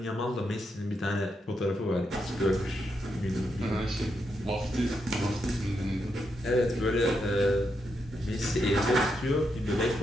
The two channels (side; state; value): both; normal; correlation 0.82